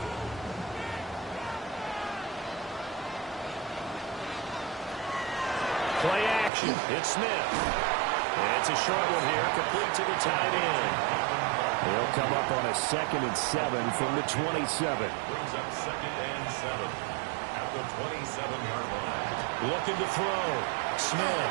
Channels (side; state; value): left; drops out; at 6.5 s